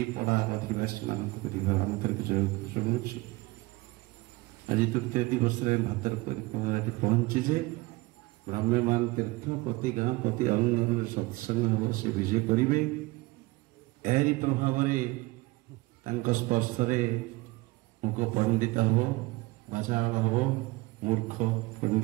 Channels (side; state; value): left; quieter; 22.1 dB